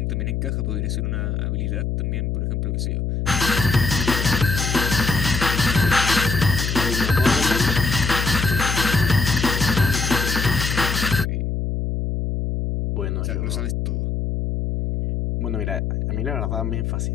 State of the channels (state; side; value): noise; left; hum, 1 dB below the sound